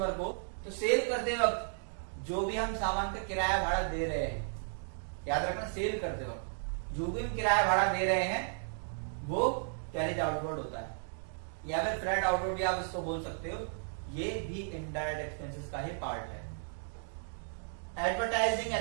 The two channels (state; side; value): silent; left; digital silence